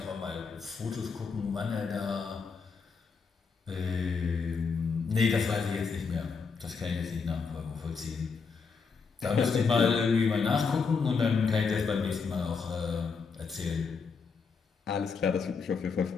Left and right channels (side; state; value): right; quieter; 5.2 dB